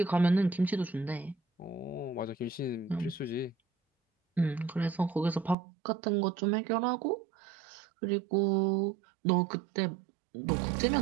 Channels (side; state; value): left; drops out; at 5.6 s